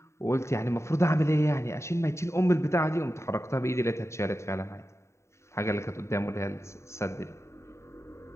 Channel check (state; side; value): late; right; 0.14 ms